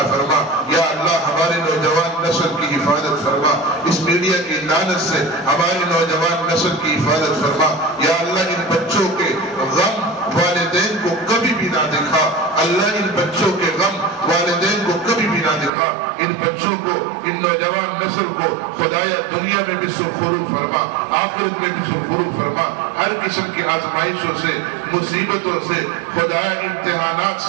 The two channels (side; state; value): left; drops out; at 15.7 s